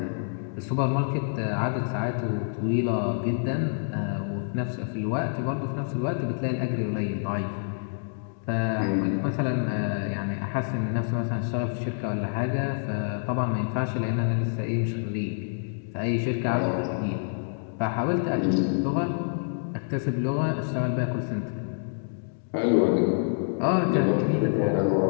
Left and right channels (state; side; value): silent; right; digital silence